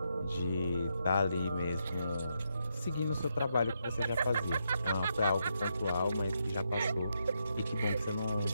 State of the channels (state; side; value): inverted; both; correlation -0.81